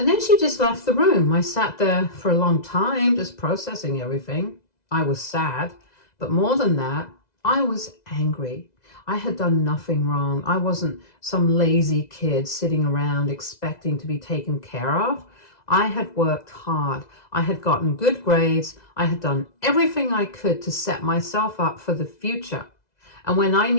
then she just left the room. I sat there for a long time, just processing everything. I was sad, but more than that, I was angry. I had done nothing wrong. I wasn't some lazy kid sitting around expecting to be taken care of. I had worked hard. I had gotten good grades. I had done everything I could to set myself up for the future. And when I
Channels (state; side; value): late; right; 2.0 ms